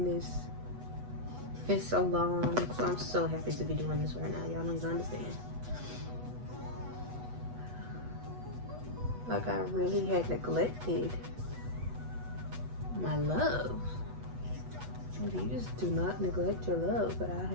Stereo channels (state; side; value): late; left; 8.1 ms